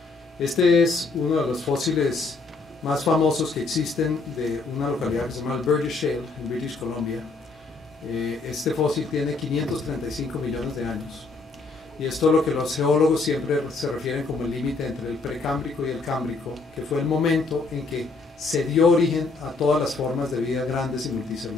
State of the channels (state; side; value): quieter; right; 3.8 dB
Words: Este es uno de los fósiles más famosos que existen de una localidad que se llama Alberta Shale, en British Columbia. Este fósil tiene 535 millones de años. Y esto es lo que los geólogos siempre se refieren como el límite entre el precámbrico y el cámbrico, que fue el momento en que se dio origen a todas las formas de vida grandes y